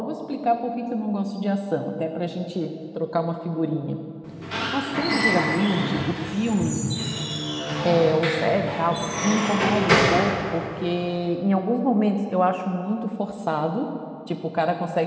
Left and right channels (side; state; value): both; identical; correlation 1.00